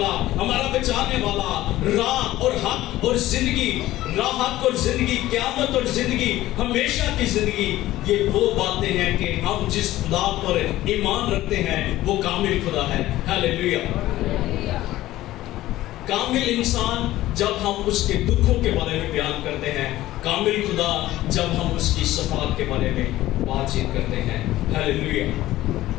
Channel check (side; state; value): right; quieter; 15.6 dB